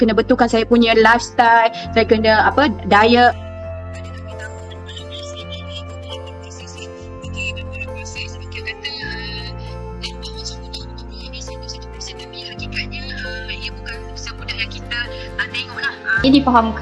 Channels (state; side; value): identical; both; correlation 1.00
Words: betulkan saya punya lifestyle, saya kena diet. Ia